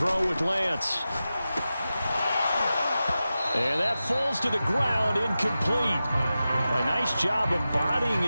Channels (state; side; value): inverted; both; correlation -0.93